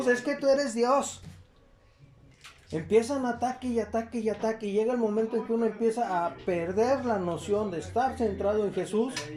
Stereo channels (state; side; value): identical; both; correlation 1.00